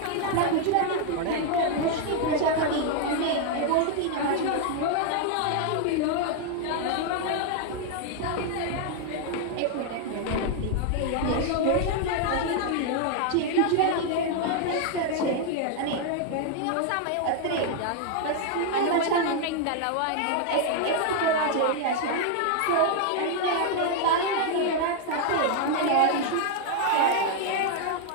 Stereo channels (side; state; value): both; different; correlation 0.00